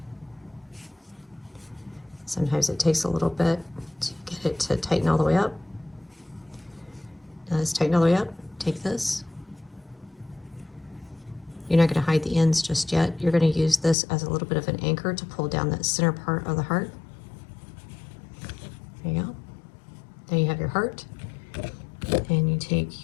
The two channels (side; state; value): right; drops out; at 14.0 s